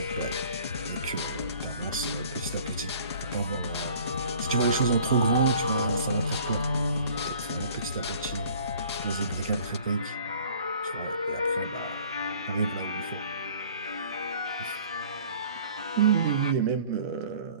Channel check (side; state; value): both; inverted; correlation -0.51